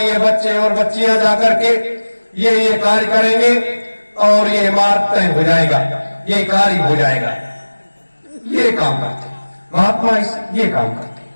बच्चे और बच्चियां जाकर के ये कार्य करेंगे और ये मार्ग तय हो जाएगा, ये कार्य हो जाएगा। ये काम करते हैं महात्मा, ये काम करते हैं।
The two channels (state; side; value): inverted; both; correlation -1.00